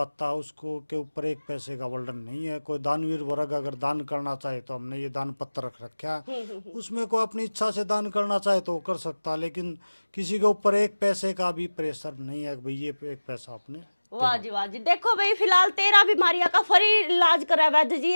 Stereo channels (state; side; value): inverted; both; correlation -1.00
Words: है उसको के ऊपर 1 पैसे का वर्णन नहीं है। कोई दानवीर वर्ग अगर दान करना चाहे तो हमने ये दान पत्र रख रखा है, उसमें कोई अपनी इच्छा से दान करना चाहे तो वो कर सकता है, लेकिन किसी के ऊपर 1 पैसे का भी प्रेशर नहीं है कि भाई ये 1 पैसा आपने। वाह जी वाह जी। देखो भाई, फिलहाल 13 बीमारियां का फ्री इलाज करा वैद्य जी।